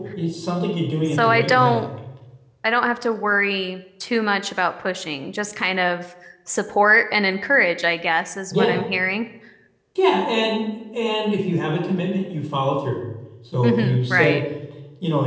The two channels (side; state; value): both; identical; correlation 1.00